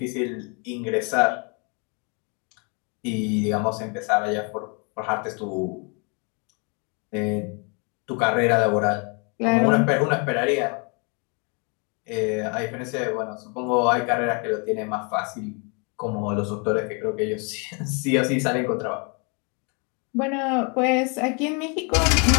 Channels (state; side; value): quieter; right; 34.5 dB